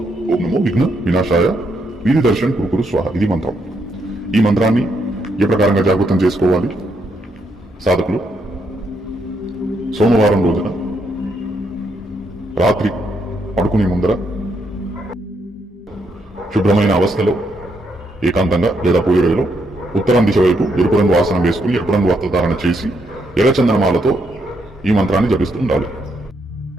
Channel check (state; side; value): normal; both; correlation 0.77